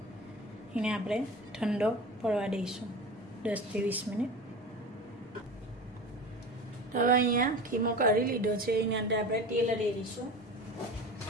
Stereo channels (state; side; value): normal; both; correlation 0.33